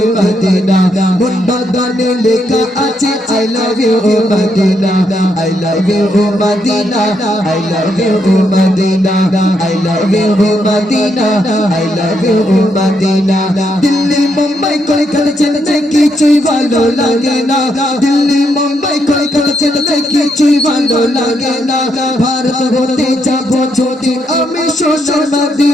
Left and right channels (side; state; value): both; normal; correlation 0.78